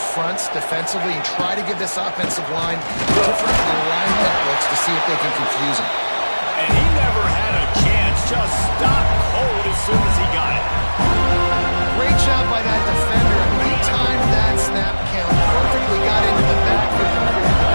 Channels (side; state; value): both; inverted; correlation -1.00